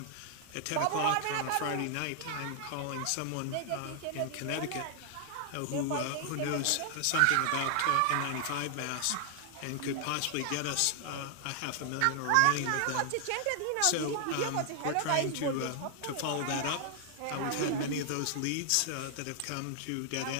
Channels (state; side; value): different; both; correlation 0.00